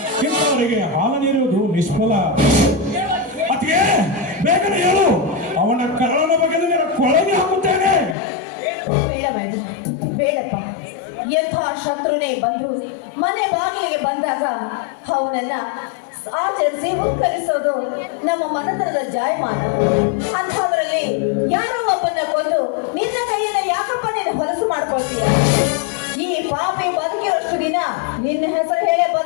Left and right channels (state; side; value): drops out; right; at 8.2 s